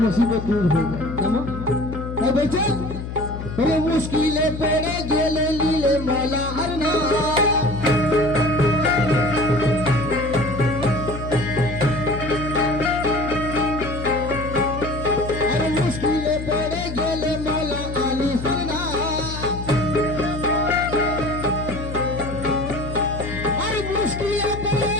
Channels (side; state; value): left; noise; hum, 7 dB below the sound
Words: মুসিবত দূর হয়ে যায়। কেমন বলছে মুশকিলে পড়ে গেলে লীলে মৌলা আর না, মুশকিলে পড়ে গেলে মৌলা আলী সরনা, আর মুশকিলে পড়ে